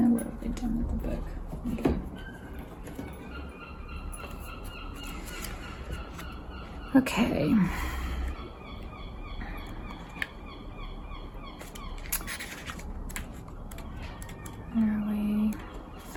they done with the book? Okay.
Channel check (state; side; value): identical; both; correlation 1.00